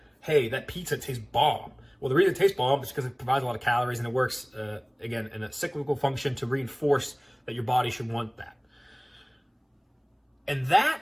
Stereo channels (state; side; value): identical; both; correlation 1.00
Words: hey, that pizza tastes bomb. Well, the reason it tastes bomb is because it provides a lot of calories, and it works, again, in a cyclical function to reinforce that your body should want that. And that,